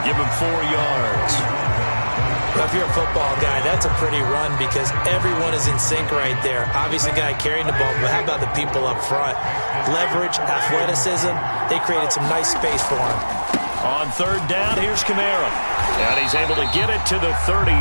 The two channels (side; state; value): both; inverted; correlation -1.00